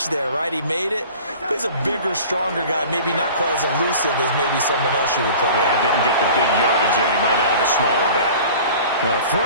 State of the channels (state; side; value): inverted; both; correlation -0.42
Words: there, right? He made it. But he's a bigger, stronger guy, maybe not quite as elusive as maybe someone else you would put there. Didn't get the big yardage there. You might have a smaller back. Throw